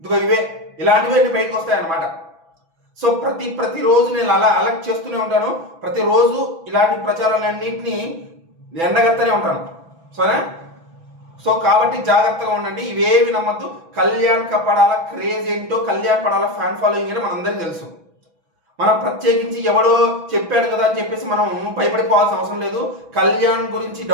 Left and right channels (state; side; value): late; left; 6.1 ms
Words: ఇలాంటివి అన్ని బయటకు వస్తాయన్నమాట. సో ప్రతిరోజు నేను అలా అలర్ట్ చేస్తూనే ఉంటాను. ప్రతిరోజు ఇలాంటి ప్రచారాలన్నింటినీ ఎండగత్తనే ఉంటాను. సరే, సో కాబట్టి జాగ్రత్తగా ఉండండి. ఇవేవి నమ్మద్దు. కళ్యాణ్ పడాల క్రేజ్ ఏంటో, కళ్యాణ్ పడాల ఫ్యాన్ ఫాలోయింగ్ ఏంటో మనందరికీ తెలుసు. మనం ప్రత్యేకించి ఎవడో చెప్పాడు కదా అని చెప్పేసి మనం భయపడిపోవాల్సిన అవసరం లేదు. కళ్యాణ్ గురించి